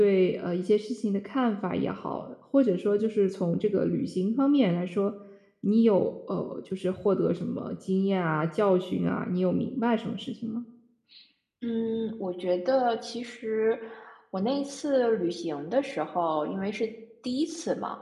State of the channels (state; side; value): identical; both; correlation 1.00